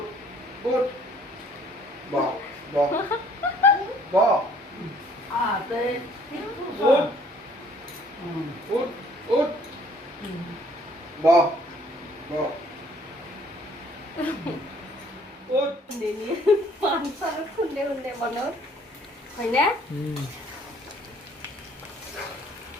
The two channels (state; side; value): normal; both; correlation 0.59